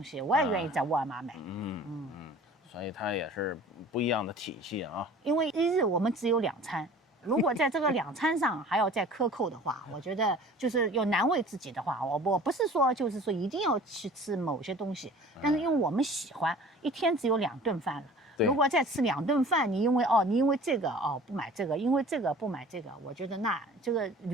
西，我也愿意在沃尔玛买。所以它也是不一样的体系啊。因为一日我们只有2餐。如果在这个2餐上还要再克扣的话，我觉得就是要难为自己的话，我不是说就是说一定要去吃某些东西，但是因为我们喜欢，一天只有2顿饭了。如果再吃2顿饭，你因为这个不买这个，因为这个不买这个，我觉得那这个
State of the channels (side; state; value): both; normal; correlation 0.46